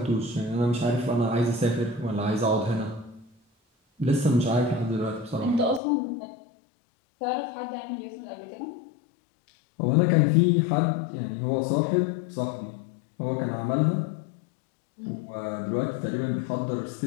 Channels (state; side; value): drops out; right; at 5.8 s